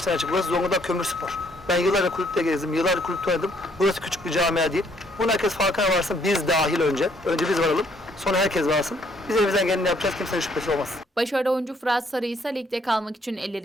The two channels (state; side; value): normal; both; correlation 0.67